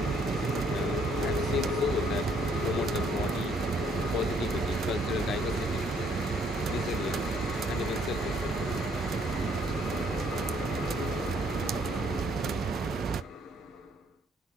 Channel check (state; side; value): normal; both; correlation 0.66